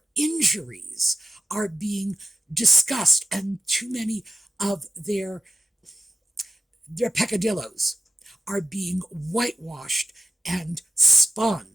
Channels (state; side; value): normal; both; correlation 0.90